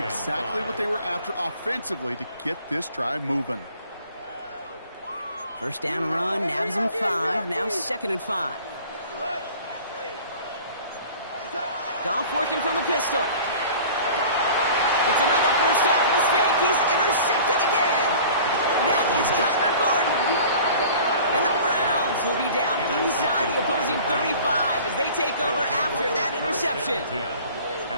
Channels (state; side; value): inverted; both; correlation -0.45